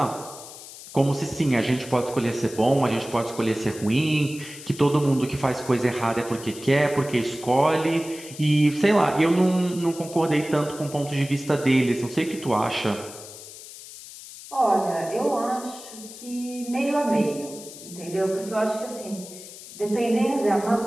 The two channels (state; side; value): noise; left; hiss, 15 dB below the sound